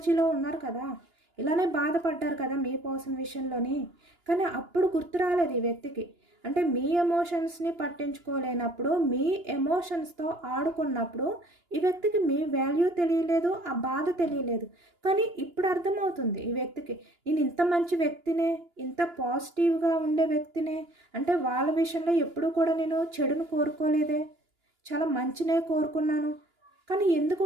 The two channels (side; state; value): left; late; 2.9 ms